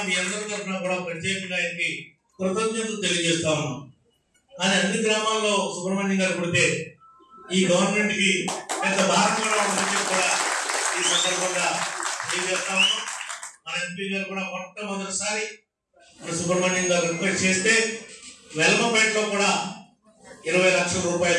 మీ అందరి తరఫున కూడా ప్రత్యేకంగా ఆయనకి కృతజ్ఞతలు తెలియజేస్తా ఉన్నాం. కానీ అన్ని గ్రామాల్లో సుబ్రహ్మణ్యం గారు పుడితే ఈ గవర్నమెంట్ కి పెద్ద భారం కూడా ఉందని కూడా ఈ సందర్భంగా తెలియజేస్తా ఉన్నాం. మన ఎంపీ గారు కూడా మొట్టమొదటిసారి సుబ్రహ్మణ్యం గారు రిక్వెస్ట్ చేస్తే వెల్మపేటలో కూడా 20 లక్షల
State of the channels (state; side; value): identical; both; correlation 1.00